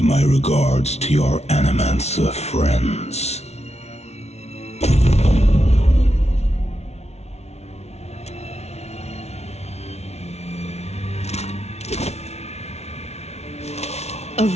my regards to your Animancer friends.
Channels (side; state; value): right; late; 0.31 ms